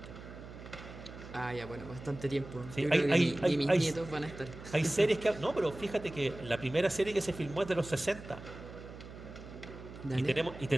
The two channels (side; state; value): right; noise; hum, 14 dB below the sound